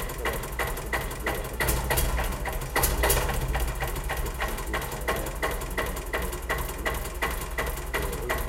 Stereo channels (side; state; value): both; identical; correlation 1.00